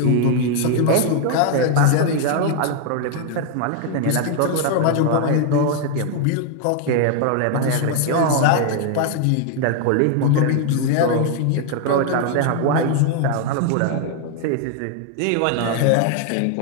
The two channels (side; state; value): both; different; correlation 0.00